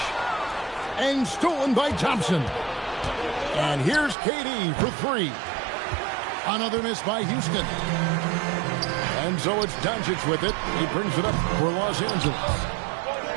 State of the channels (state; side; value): drops out; left; at 4.2 s